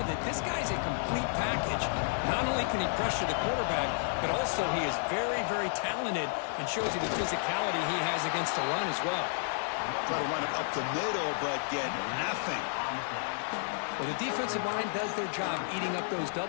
this guy's a complete package. Not only can he pressure the quarterback, but also he is very, very talented and shows you the physicality he has against the run as well. Try to run it up the middle, but get nothing. Well, the defensive line does their job eating up those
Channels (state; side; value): silent; right; 57 dB below the other